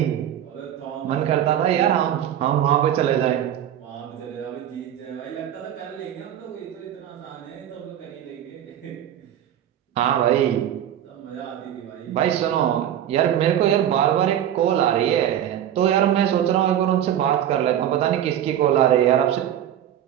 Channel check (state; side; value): quieter; left; 10.8 dB